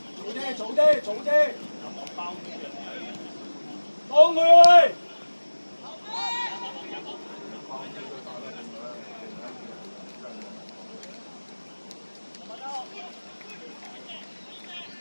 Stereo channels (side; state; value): both; inverted; correlation -1.00